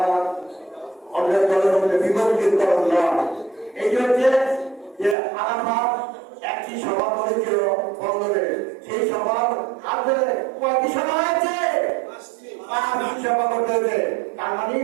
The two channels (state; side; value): drops out; left; at 5.2 s